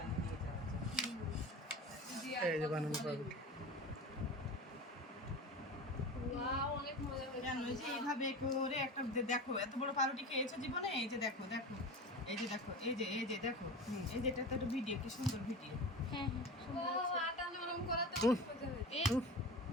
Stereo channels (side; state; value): both; normal; correlation 0.31